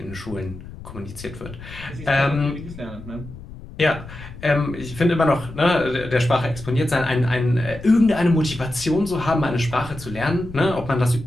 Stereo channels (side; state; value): left; noise; rumble, 15 dB below the sound